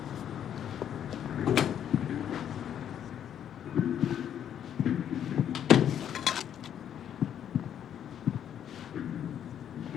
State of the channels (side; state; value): right; quieter; 9.6 dB